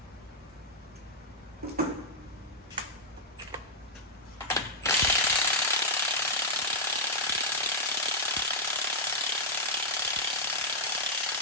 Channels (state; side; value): normal; both; correlation -0.06